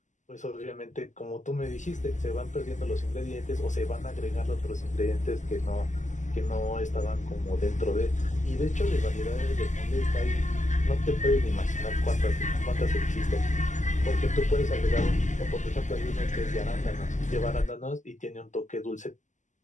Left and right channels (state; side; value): late; right; 0.35 ms